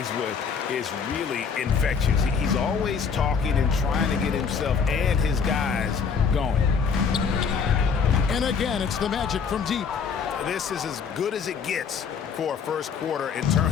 with is really infectious. He's always talking and trying to get himself and his guys going. And again, it's the Magic from deep. This is as good as it gets for a first quarter in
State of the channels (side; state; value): right; quieter; 6.1 dB